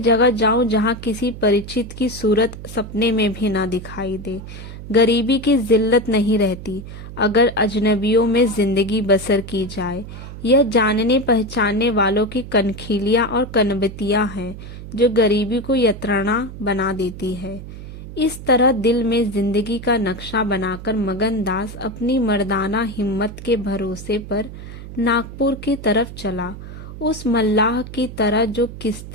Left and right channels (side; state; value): right; noise; hum, 12 dB below the sound